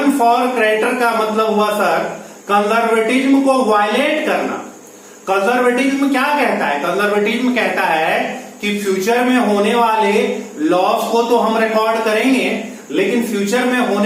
फॉर क्रेडिटर का मतलब हुआ सर कंजर्वेटिज्म को वायलेट करना। कंजर्वेटिज्म क्या कहता है, कंजर्वेटिज्म कहता है कि फ्यूचर में होने वाले लॉस को तो हम रिकॉर्ड करेंगे, लेकिन फ्यूचर में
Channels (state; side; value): identical; both; correlation 1.00